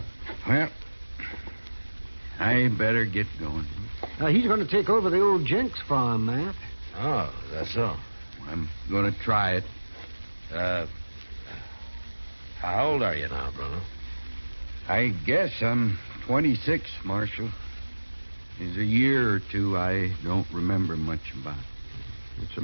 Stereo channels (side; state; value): both; inverted; correlation -1.00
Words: Well, I better get going. He's going to take over the old Jenks farm, Matt. Oh, that's so. I'm going to try it. How old are you now, Bruno? I guess I'm 26, Marshal. There's a year or two I don't remember much about. It's a